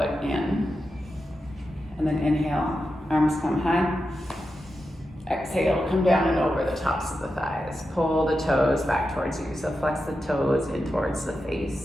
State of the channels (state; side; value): normal; both; correlation 0.89